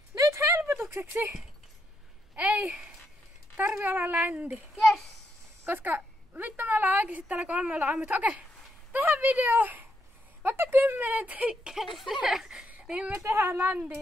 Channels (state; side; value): normal; both; correlation 0.79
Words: Nyt helpotukseksi ei tarvi olla ländi. Yes! Koska vittu me ollaan oikeesti täällä 3 aamutta. Okei, tähän video vaikka 10 tikkeistä, niin me tehdään